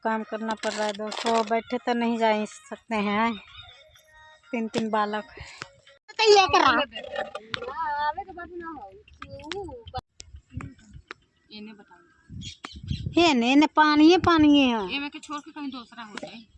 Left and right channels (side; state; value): both; identical; correlation 1.00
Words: काम करना पड़ रहा है दोस्तों। बैठे तो नहीं जा सकते हैं, 3 बालक ने पानी है के छोड़ के कहीं दूसरा हो जाए।